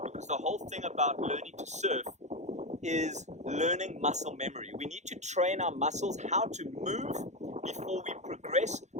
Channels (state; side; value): late; left; 0.33 ms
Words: because the whole thing about learning to surf is learning muscle memory. We need to train our muscles how to move before we progress